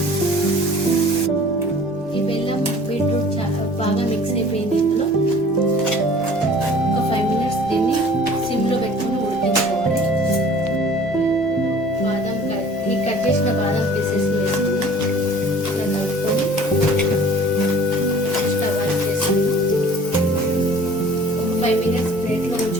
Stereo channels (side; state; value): both; normal; correlation 0.48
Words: ఈ బెల్లం బీట్రూట్ బాగా మిక్స్ అయిపోయింది. ఇందులో ఒక 5 minutes దీన్ని సిమ్లో పెట్టుకుని ఉడికించుకోవాలి. ఈ కట్ చేసిన బాదం పీసెస్ వేసుకుని ఇలా కలుపుకొని స్టవ్ ఆఫ్ చేసుకుని ఒక 5 minutes ప్లేట్లో